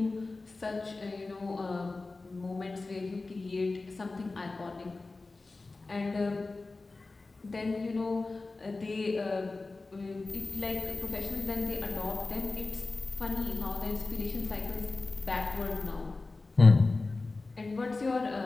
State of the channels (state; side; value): quieter; right; 3.5 dB